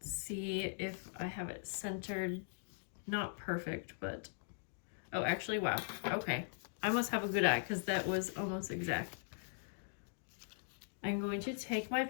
see if I have it centered. Not perfect, but oh, actually, wow. Okay, I must have a good eye because that was almost exact. I'm going to take my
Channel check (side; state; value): right; silent; digital silence